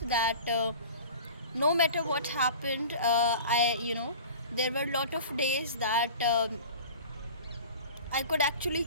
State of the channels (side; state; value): both; inverted; correlation -0.40